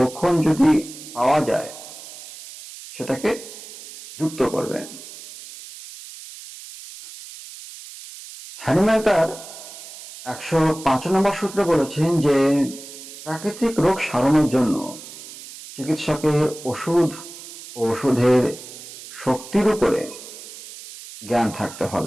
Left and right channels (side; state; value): right; noise; hiss, 15 dB below the sound